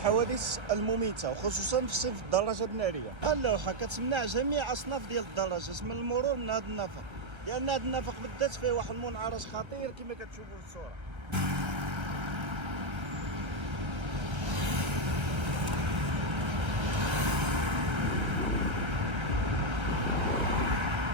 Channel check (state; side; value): late; left; 1.3 ms